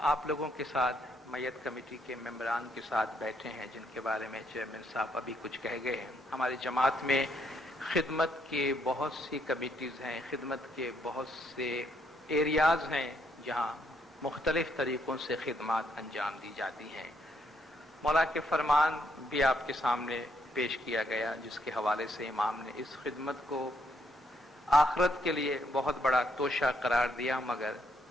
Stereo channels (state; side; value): normal; both; correlation 0.73